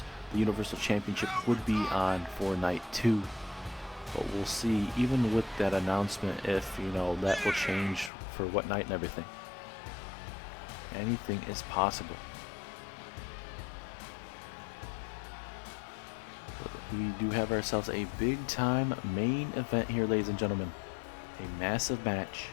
the Universal Championship would be on for night 2. But we'll see, even with that announcement, if that will change for what night and everything. Anything is possible. We do have ourselves a big time main event here, ladies and gentlemen. A massive match.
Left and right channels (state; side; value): drops out; right; at 8.1 s